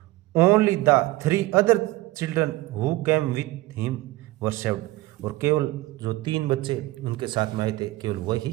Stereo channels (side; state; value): left; quieter; 18.7 dB